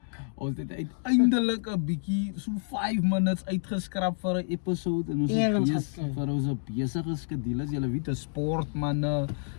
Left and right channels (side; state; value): right; silent; digital silence